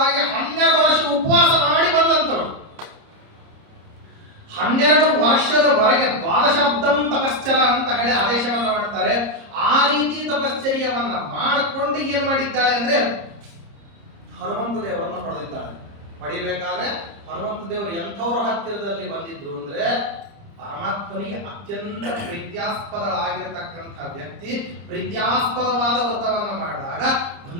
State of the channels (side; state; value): left; late; 30 ms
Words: 12 ವರ್ಷ ಉಪವಾಸ ಮಾಡಿ ಬಂದಂತವಳು. 12 ವರ್ಷದವರೆಗೆ 12 ತಪಶ್ಚರ ಅಂತ ಹೇಳಿ ಆದೇಶವನ್ನ ಮಾಡ್ತಾರೆ. ಆ ರೀತಿ ತಪಶ್ಚರ್ಯವನ್ನ ಮಾಡಿಕೊಂಡು ಏನ್ ಮಾಡಿದ್ದಾಳೆ ಅಂದ್ರೆ ಹನುಮಂತ ದೇವರನ್ನು ಪಡೆದಿದ್ದಾಳೆ. ಪಡಿಬೇಕಾದ್ರೆ ಹನುಮಂತ ದೇವರು ಎಂಥವ್ರ ಹತ್ತಿರದಲ್ಲಿ ಬಂದಿದ್ರು ಅಂದ್ರೆ ಪರಮಾತ್ಮನಿಗೆ ಅತ್ಯಂತ ಪ್ರೀತ್ಯಾಸ್ಪದಳಾಗಿರತಕ್ಕಂಥ ವ್ಯಕ್ತಿ ಪ್ರೀತ್ಯಾಸ್ಪದವಾದ ವ್ರತವನ್ನ ಮಾಡಿದಾಗ